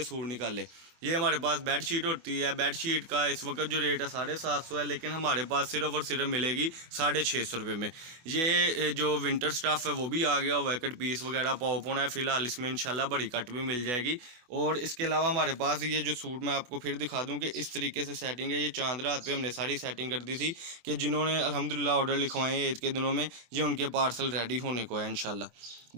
सूट निकाले। ये हमारे पास बेड शीट होती है। बेड शीट का इस वक्त जो रेट है 750 है, लेकिन हमारे पास सिर्फ और सिर्फ मिलेगी 650 रुपये में। ये जो विंटर स्टफ़ है वो भी आ गया हुआ है, कट पीस वगैरह पॉप होना है फ़िलहाल इसमें, इंशाल्लाह बड़ी कट भी मिल जाएगी। और इसके अलावा हमारे पास ये जो सूट मैं आपको फिर दिखा दूँ कि इस तरीके से सेटिंग है। ये चांद रात पे हमने सारी सेटिंग कर दी थी कि जिन्होंने अल्हम्दुलिल्लाह ऑर्डर लिखवाए हैं ईद के दिनों में, ये उनके पार्सल रेडी होने को है इंशाल्लाह।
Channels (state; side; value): late; left; 25 ms